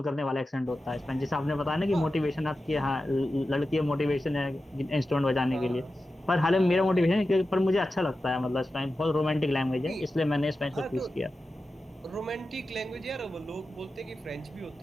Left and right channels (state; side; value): normal; both; correlation 0.93